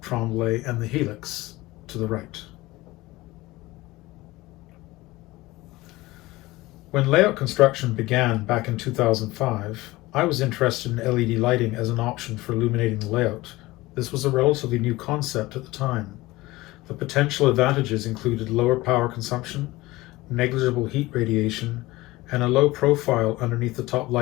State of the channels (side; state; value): right; quieter; 19.6 dB